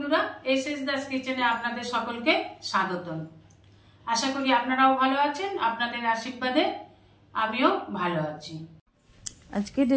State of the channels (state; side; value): identical; both; correlation 1.00